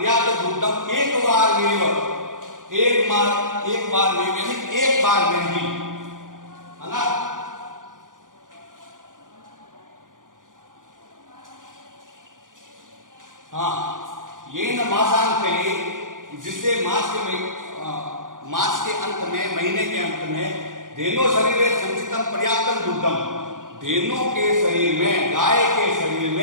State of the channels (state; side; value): late; left; 0.89 ms